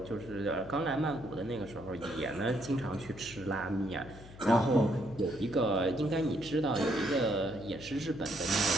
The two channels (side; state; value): left; noise; hum, 17 dB below the sound